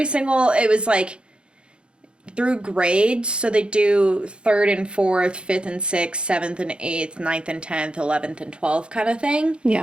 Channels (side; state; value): left; late; 0.055 ms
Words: was like through grades. So they do 3rd and 4th, 5th and 6th, 7th and 8th, 9th and 10th, 11th and 12th kind of thing.